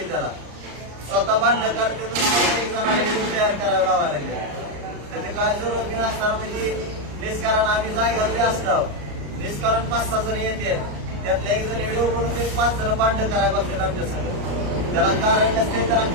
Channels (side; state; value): left; late; 34 ms